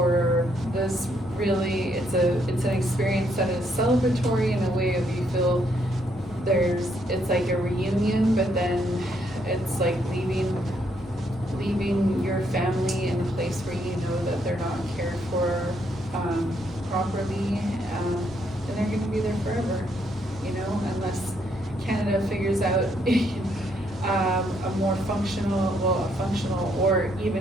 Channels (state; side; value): normal; both; correlation 0.73